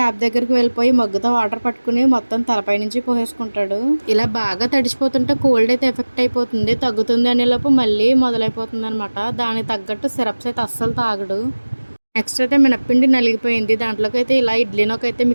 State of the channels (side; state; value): both; inverted; correlation -1.00